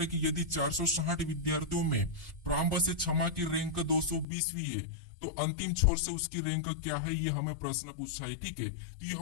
कि यदि 460 विद्यार्थियों में प्रारंभ से क्षमा की रैंक 220वीं है, तो अंतिम छोर से उसकी रैंक क्या है, ये हमें प्रश्न पूछा है। ठीक है, तो ये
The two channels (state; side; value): drops out; right; at 4.2 s